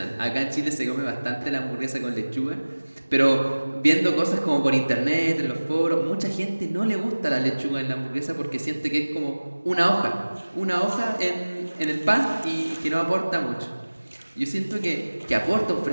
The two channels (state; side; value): inverted; both; correlation -1.00